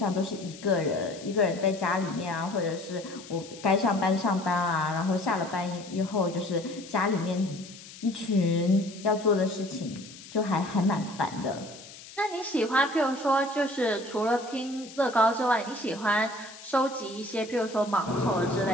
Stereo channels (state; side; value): noise; left; hiss, 17 dB below the sound